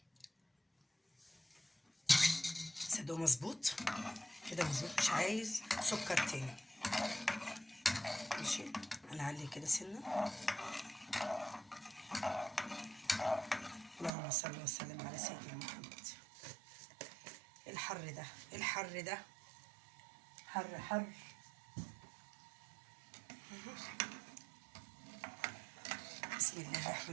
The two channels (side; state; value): left; drops out; at 14.1 s